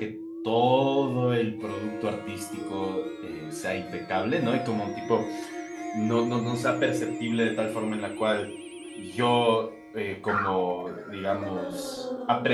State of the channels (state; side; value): identical; both; correlation 1.00